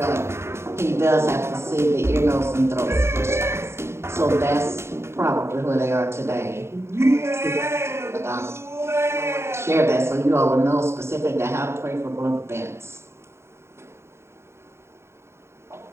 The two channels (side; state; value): left; late; 0.13 ms